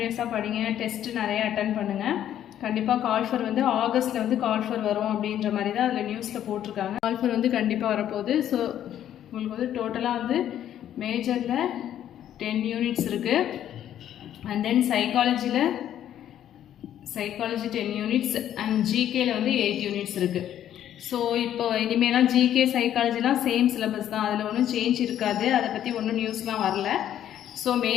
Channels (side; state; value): right; quieter; 10.9 dB